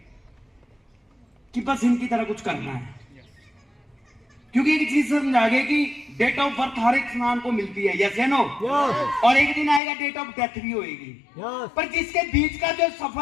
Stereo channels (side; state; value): right; drops out; at 9.8 s